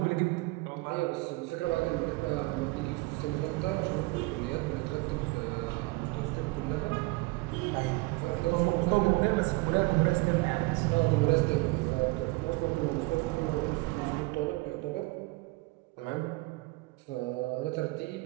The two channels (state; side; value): quieter; left; 23.4 dB